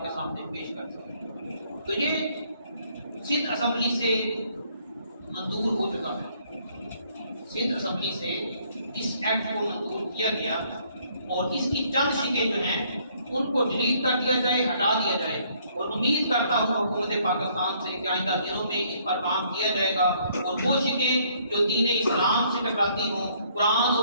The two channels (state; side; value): inverted; both; correlation -0.66